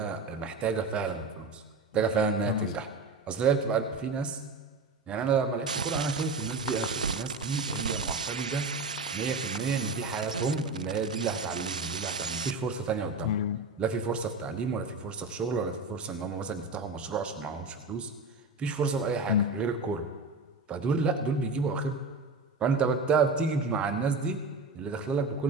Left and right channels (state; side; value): quieter; left; 3.6 dB